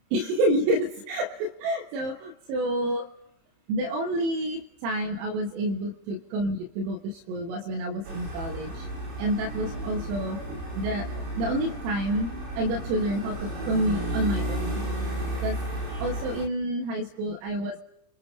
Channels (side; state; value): left; late; 30 ms